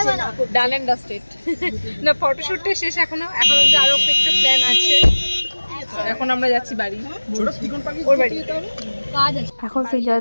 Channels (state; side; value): inverted; both; correlation -1.00